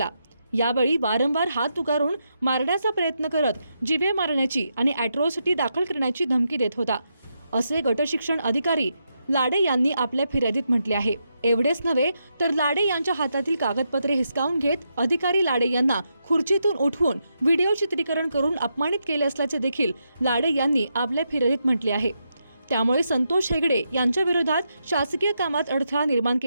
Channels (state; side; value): inverted; both; correlation -0.83